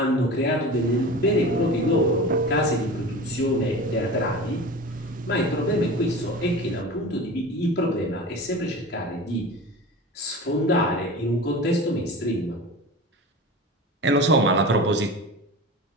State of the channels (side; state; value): both; normal; correlation 0.33